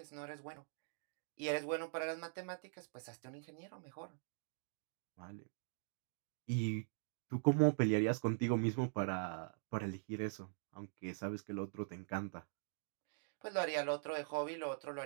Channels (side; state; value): left; silent; digital silence